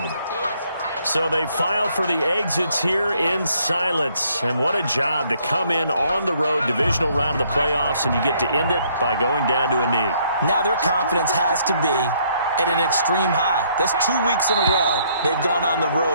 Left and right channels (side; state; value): both; inverted; correlation -0.67